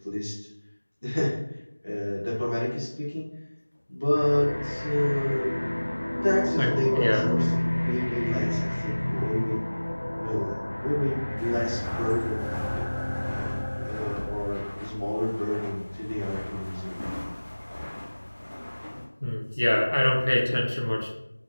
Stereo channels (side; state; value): both; inverted; correlation -1.00